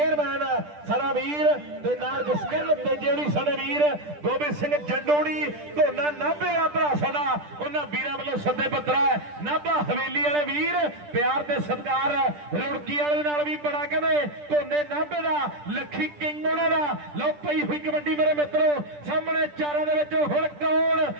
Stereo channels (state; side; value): late; left; 10 ms